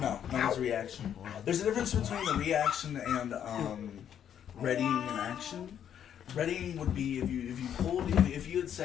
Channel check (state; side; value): quieter; right; 9.3 dB